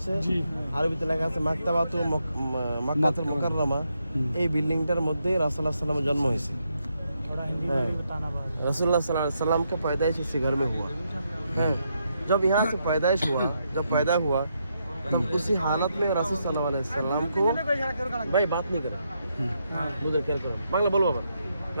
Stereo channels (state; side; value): inverted; both; correlation -0.80